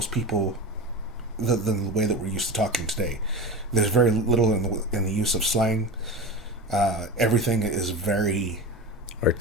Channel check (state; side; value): normal; both; correlation 0.27